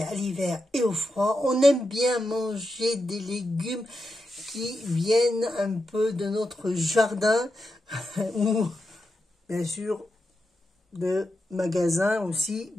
à l'hiver et au froid, on aime bien manger des légumes qui viennent un peu de notre jardin ou bien sûr de magasins aussi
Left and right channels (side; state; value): both; normal; correlation 0.87